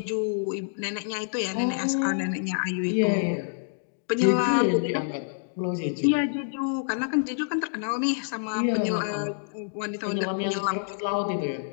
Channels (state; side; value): silent; right; digital silence